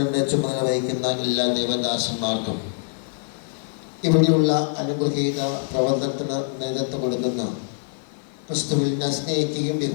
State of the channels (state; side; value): silent; right; digital silence